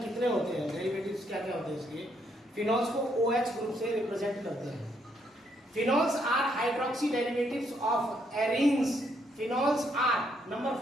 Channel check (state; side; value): normal; both; correlation 0.73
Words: कितने होते हैं, डेरिवेटिव्स क्या क्या होते हैं इसके। फिनॉल्स को OH ग्रुप से रिप्रेजेंट करते हैं। Phenols are hydroxy derivatives of arenes. Phenols are number